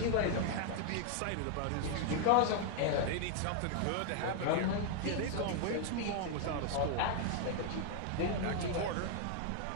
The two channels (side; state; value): both; different; correlation 0.00